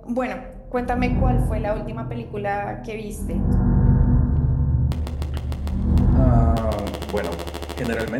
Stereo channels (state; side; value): identical; both; correlation 1.00